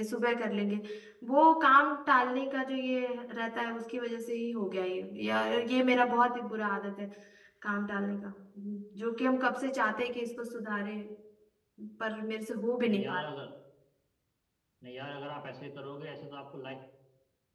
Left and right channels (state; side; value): identical; both; correlation 1.00